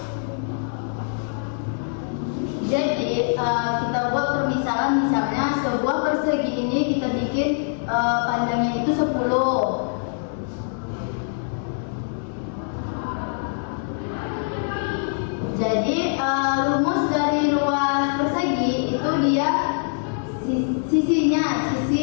Jadi kita buat permisalan, misalnya sebuah persegi ini kita bikin panjangnya itu 10. Jadi rumus dari luas persegi itu dia sisinya,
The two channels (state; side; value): silent; right; digital silence